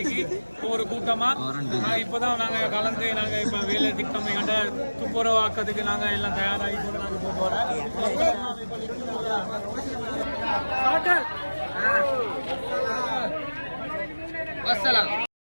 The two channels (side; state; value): both; inverted; correlation -1.00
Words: ஒவ்வொரு கூட்டமாக இப்போதான் நாங்கள் கலந்து நாங்கள் இப்போ வேலை திட்டம் எங்கள்கிட்ட துப்புரவாக்கிறதுக்கு நாங்கள் எல்லாம் தயாராகி கூட நாங்கள் போக போகிறோம். அஸ்ஸலாம்.